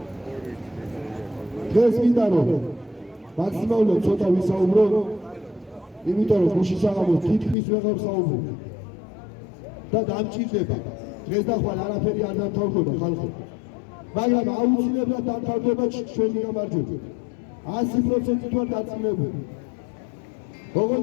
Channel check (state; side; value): drops out; right; at 7.6 s